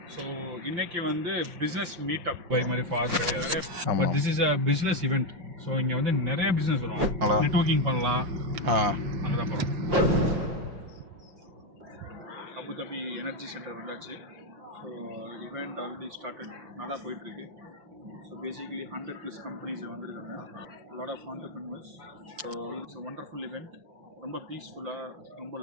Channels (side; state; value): left; late; 5.6 ms